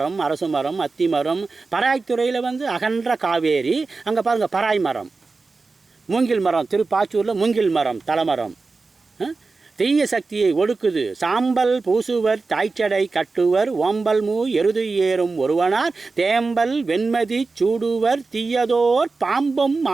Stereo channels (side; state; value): left; quieter; 4.0 dB